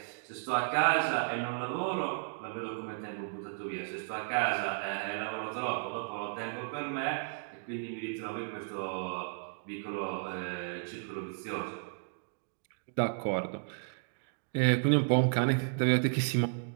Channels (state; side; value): silent; left; digital silence